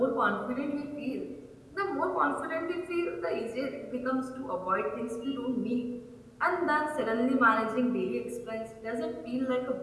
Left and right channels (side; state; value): both; identical; correlation 1.00